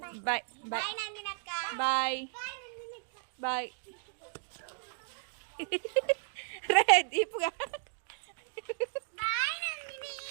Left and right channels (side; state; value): left; silent; digital silence